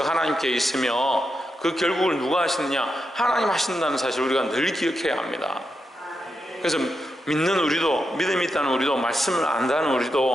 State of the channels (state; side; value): normal; both; correlation 0.86